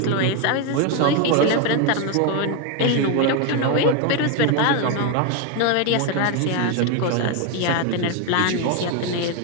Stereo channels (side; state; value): both; different; correlation 0.02